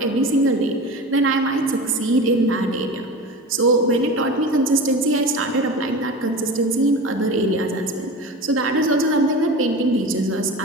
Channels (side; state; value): both; normal; correlation 0.31